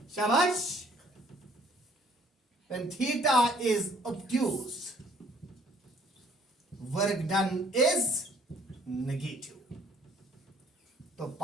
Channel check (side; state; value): both; normal; correlation 0.60